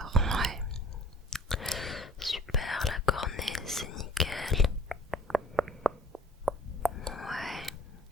ouais. Super, la cornée, c'est nickel. Ouais.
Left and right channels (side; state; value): both; normal; correlation 0.52